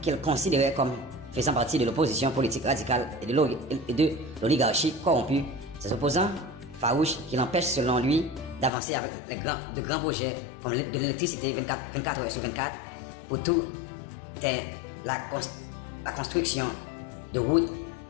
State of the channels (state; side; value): drops out; right; at 8.7 s